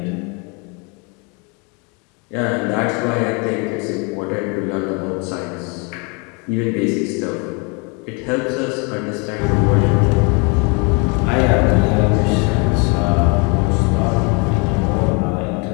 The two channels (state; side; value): quieter; right; 32.4 dB